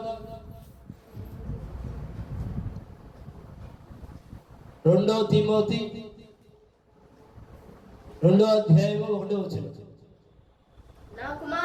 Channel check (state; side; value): identical; both; correlation 1.00